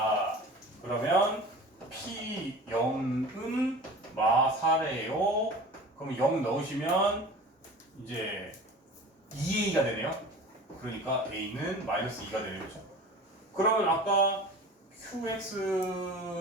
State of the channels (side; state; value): both; normal; correlation 0.38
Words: 그러면 p0은 마사래요. 그럼 0 넣으시면 이제 2a가 되네요. 그러니까 a는 마이너스 2가 되네요. 그렇죠? 그러면 아까